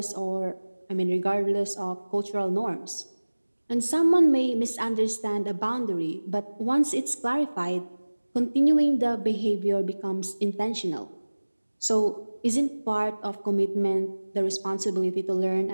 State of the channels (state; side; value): inverted; both; correlation -1.00